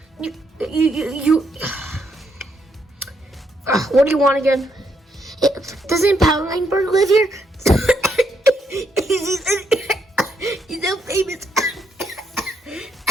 You. What do you want again? Doesn't Powerline Bird live here? He's so famous. He's so famous.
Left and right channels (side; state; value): both; normal; correlation 0.76